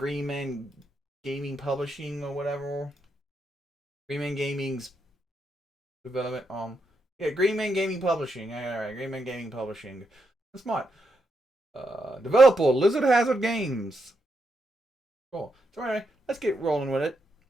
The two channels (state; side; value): normal; both; correlation 0.82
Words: Man Gaming Publishing or whatever. Green Man Gaming's development. Green Man Gaming Publishing. Alright, Green Man Gaming Publishing. That's smart. Developer Lizard Hazard Games. Cool. So anyway, let's get rolling with it.